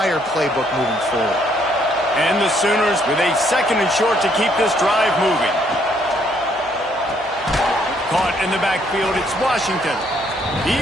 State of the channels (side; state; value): right; noise; hum, 26 dB below the sound